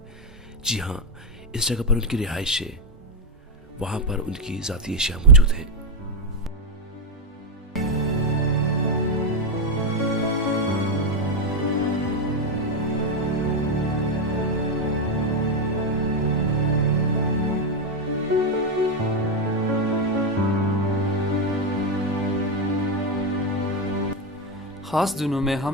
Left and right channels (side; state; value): both; normal; correlation 0.05